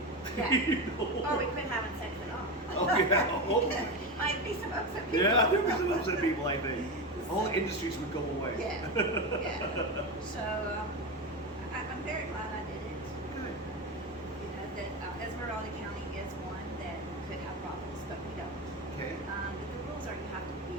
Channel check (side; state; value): both; normal; correlation 0.18